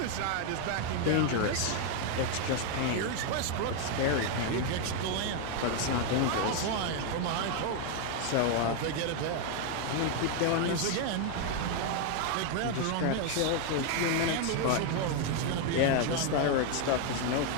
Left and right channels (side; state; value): both; different; correlation 0.01